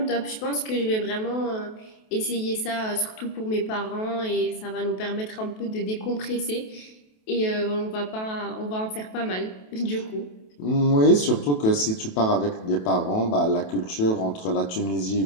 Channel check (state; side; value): late; right; 28 ms